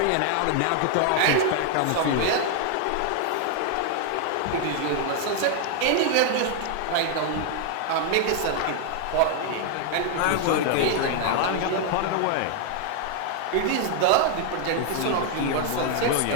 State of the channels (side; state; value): both; different; correlation 0.00